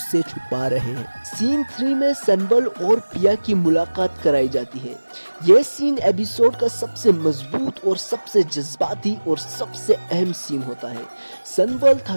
سے چھپا رہے ہیں۔ سین 3 میں سنبل اور پیا کی ملاقات کرائی جاتی ہے۔ یہ سین ایپیسوڈ کا سب سے مضبوط اور سب سے جذباتی اور سب سے اہم سین ہوتا ہے۔ سنبل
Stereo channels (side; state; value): both; inverted; correlation -1.00